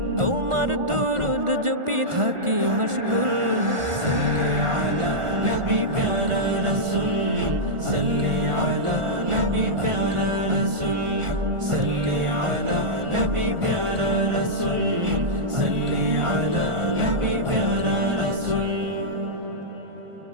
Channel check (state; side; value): late; left; 1.4 ms